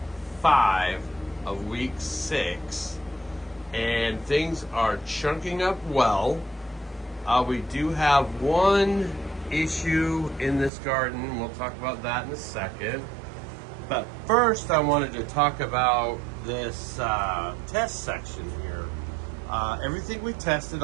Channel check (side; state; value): left; drops out; at 10.7 s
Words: 5 of week 6, and things are chunking up well. We do have one issue in this garden. We'll talk about that in a second. But first, I wanted to talk about this test section here. Everything we tested,